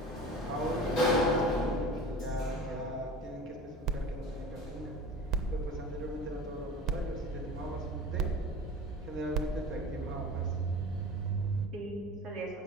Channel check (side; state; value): both; normal; correlation 0.37